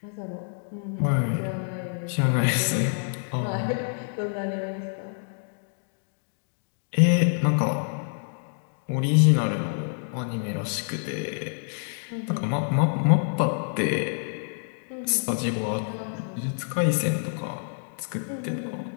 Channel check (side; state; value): right; silent; digital silence